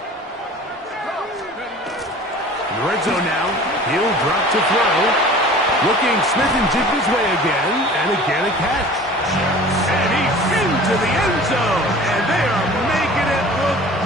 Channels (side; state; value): both; normal; correlation 0.43